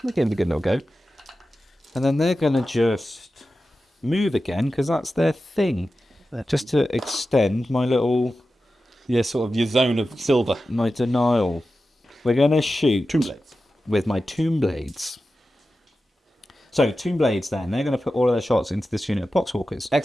They gave it a good little go. And then they're going to just move again, because that's their thing. Just to extend my little... Yeah, sort of your zone of silver. My denial. We're going to shoot... Tomb Blades. With my Tomb Blades. So, Tomb Blades then, they're going to put all of their shots into this unit of Poxwalkers.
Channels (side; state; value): both; normal; correlation 0.93